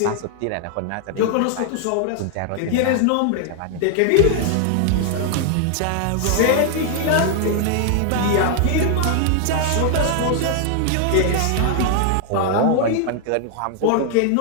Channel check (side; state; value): both; different; correlation 0.00